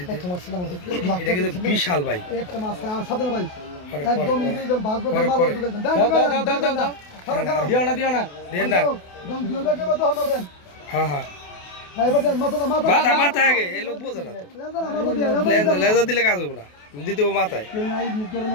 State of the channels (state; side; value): late; right; 28 ms